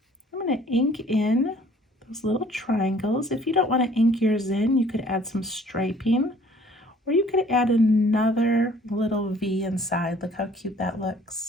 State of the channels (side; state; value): both; normal; correlation 0.55